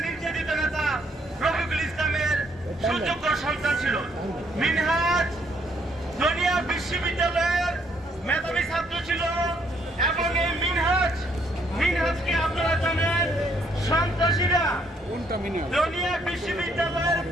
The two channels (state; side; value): normal; both; correlation 0.69